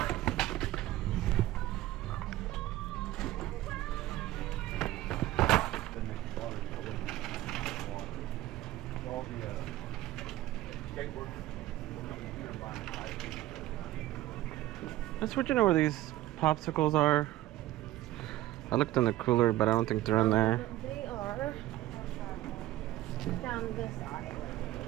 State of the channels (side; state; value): left; quieter; 15.4 dB